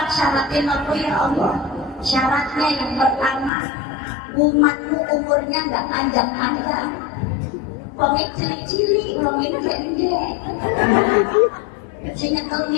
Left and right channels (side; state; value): right; drops out; at 3.5 s